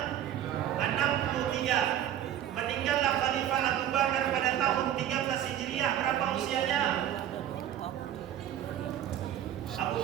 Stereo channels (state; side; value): quieter; left; 11.1 dB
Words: 63. Meninggallah Khalifah Abu Bakar pada tahun 13 Hijriah. Berapa usianya? Abu